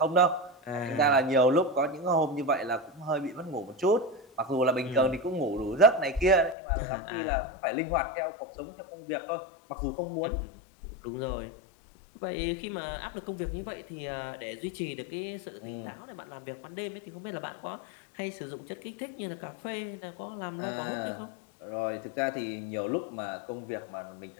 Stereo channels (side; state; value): right; drops out; at 6.6 s